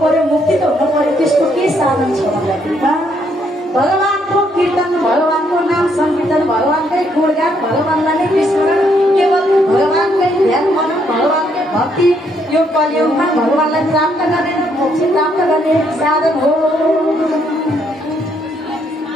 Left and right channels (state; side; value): normal; both; correlation 0.72